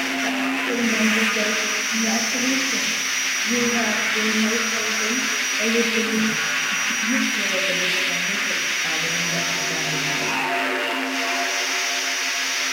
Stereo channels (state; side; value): identical; both; correlation 1.00